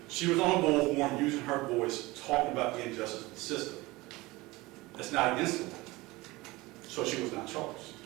She was on a bullhorn using her voice, talking about the injustice of the system. That's not against the law. So she was not charged.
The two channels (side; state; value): left; quieter; 21.2 dB